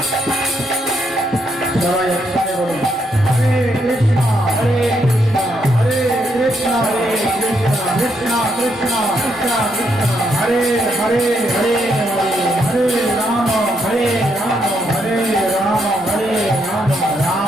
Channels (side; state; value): both; normal; correlation 0.77